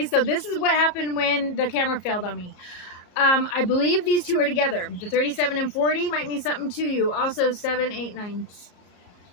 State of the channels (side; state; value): right; late; 34 ms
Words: So this is what happened when the camera failed on me. I believe these two are together. The 37 and 40 might mean something to you. Also 7, 8, 9.